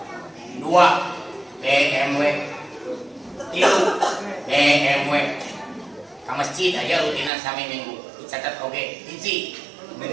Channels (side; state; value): left; drops out; at 7.3 s